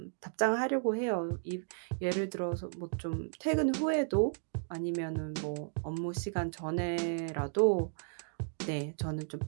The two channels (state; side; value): silent; left; digital silence